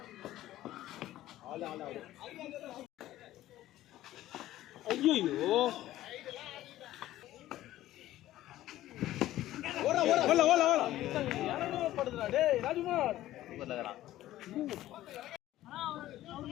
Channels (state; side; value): quieter; right; 14.5 dB